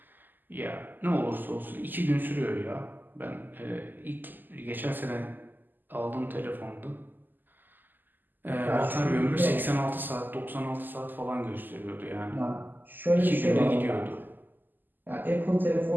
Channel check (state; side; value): late; left; 0.089 ms